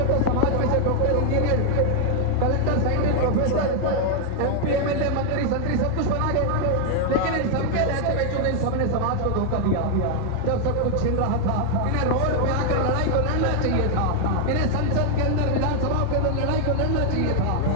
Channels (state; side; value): different; both; correlation 0.00